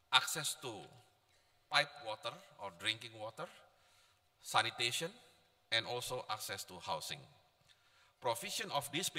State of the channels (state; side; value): identical; both; correlation 1.00